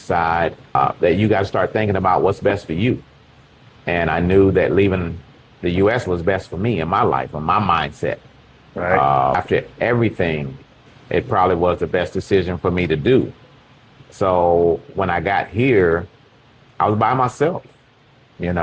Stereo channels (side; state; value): both; identical; correlation 1.00